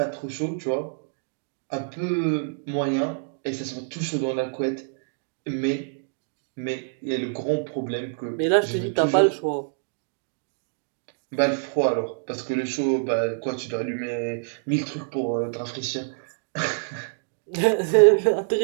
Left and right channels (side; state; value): left; silent; digital silence